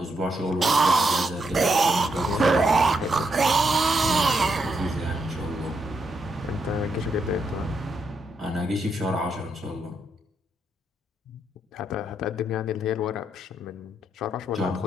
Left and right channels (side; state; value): both; normal; correlation 0.80